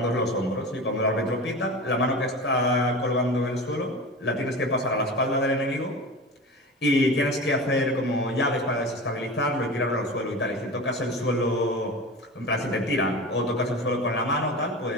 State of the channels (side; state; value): both; normal; correlation 0.31